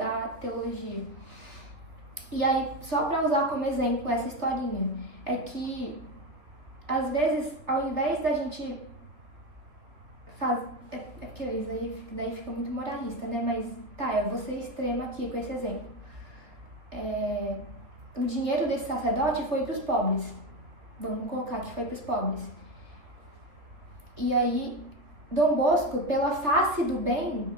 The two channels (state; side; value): late; left; 3.1 ms